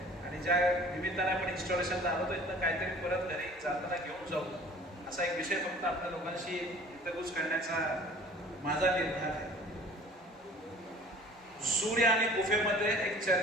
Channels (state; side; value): normal; both; correlation 0.48